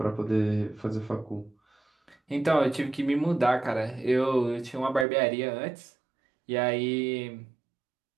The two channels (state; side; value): drops out; left; at 5.1 s